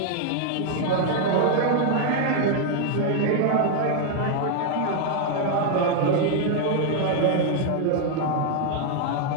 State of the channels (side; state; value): both; different; correlation 0.00